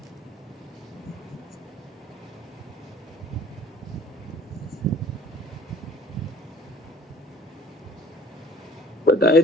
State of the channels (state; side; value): normal; both; correlation 0.53